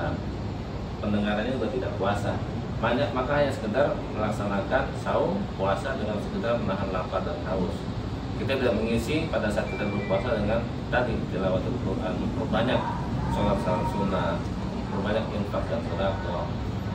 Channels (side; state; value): both; identical; correlation 1.00